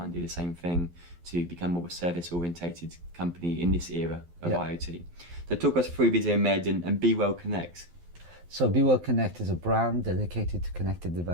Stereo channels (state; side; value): late; left; 12 ms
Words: to do the same thing to become more of a service-orientated company in this era of IoT. So talk us through Visiomed and Be Well Connect. So Be Well Connect is a brand dedicated to connected